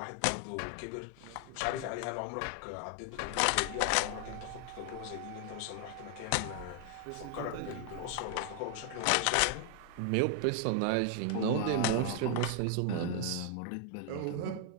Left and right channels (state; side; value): different; both; correlation 0.00